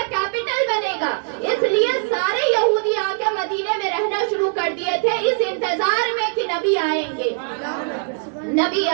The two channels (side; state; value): left; silent; 65 dB below the other